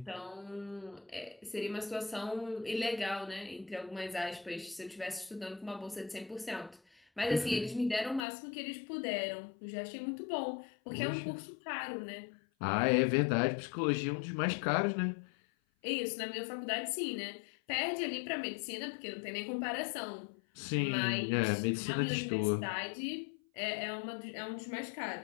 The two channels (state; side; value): drops out; right; at 8.2 s